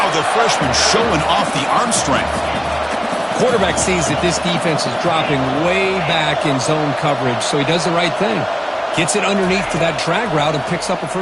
the freshman showing off the arm strength. Quarterback sees that this defense is dropping way back in zone coverage, so he does the right thing. Gets it underneath to that drag route and picks up a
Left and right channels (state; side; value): identical; both; correlation 1.00